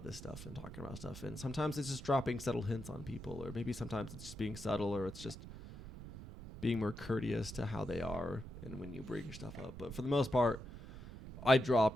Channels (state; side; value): noise; right; rumble, 12 dB below the sound